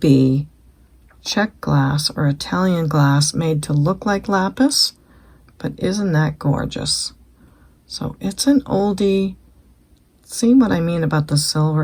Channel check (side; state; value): both; identical; correlation 1.00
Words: Czech glass or Italian glass made to look like lapis. But isn't that gorgeous? So it's an oldie. See what I mean about the